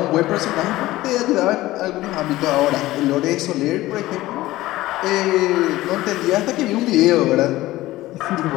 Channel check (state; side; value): quieter; right; 17.1 dB